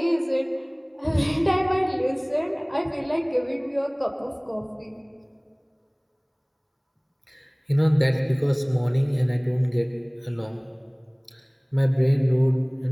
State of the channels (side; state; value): both; identical; correlation 1.00